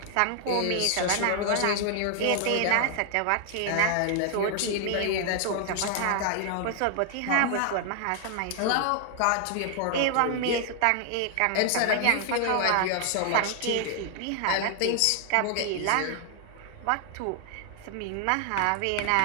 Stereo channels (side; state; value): both; different; correlation 0.00